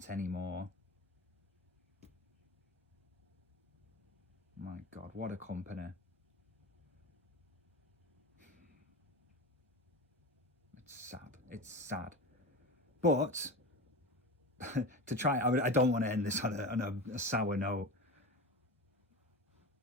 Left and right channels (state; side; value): normal; both; correlation 0.26